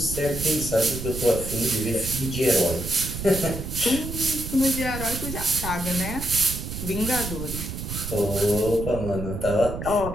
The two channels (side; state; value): right; noise; rumble, 6 dB below the sound